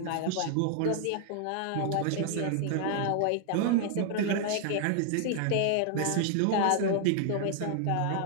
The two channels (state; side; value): different; both; correlation 0.00